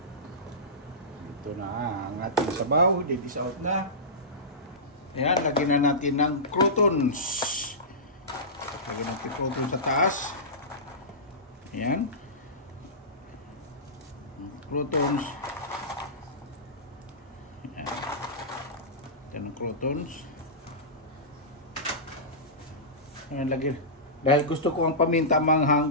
Ito na ang ating sabaw. I-dish out na. Ayan, lagyan na natin ng croutons. Lagyan natin croutons sa taas. Ayan. Croutons. Ayan. Ito ng croutons. Ayan, lagyan. Dahil gusto ko ang paminta manghang,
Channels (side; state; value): both; normal; correlation -0.19